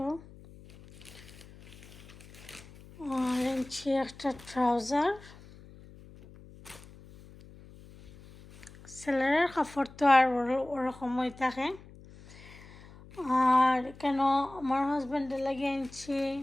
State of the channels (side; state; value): left; noise; hum, 20 dB below the sound